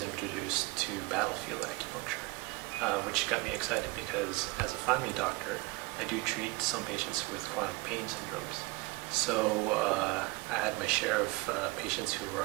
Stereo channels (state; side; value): quieter; left; 23.7 dB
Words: introduced to battlefield acupuncture, which got me excited because as a family doctor, I do treat some patients with chronic pain syndromes. So I had my share of patients who were